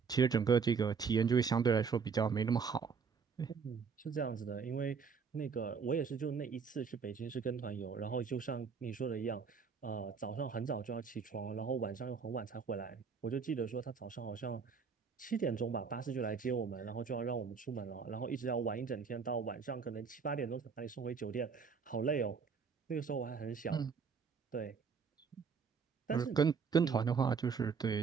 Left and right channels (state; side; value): quieter; left; 5.8 dB